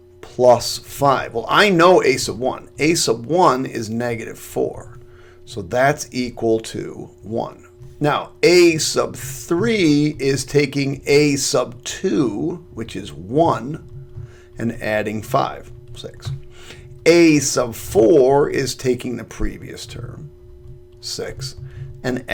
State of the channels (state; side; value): identical; both; correlation 1.00